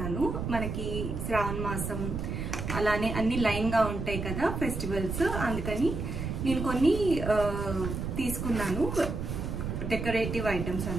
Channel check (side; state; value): right; noise; rumble, 4 dB below the sound